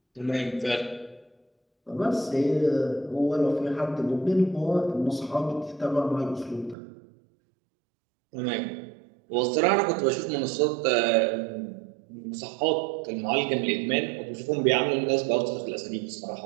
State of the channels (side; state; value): left; drops out; at 6.8 s